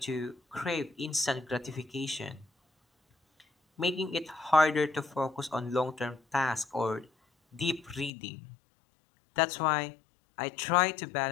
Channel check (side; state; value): right; drops out; at 8.1 s